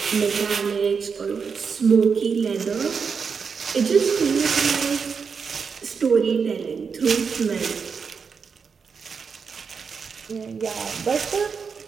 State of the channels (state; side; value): quieter; left; 5.8 dB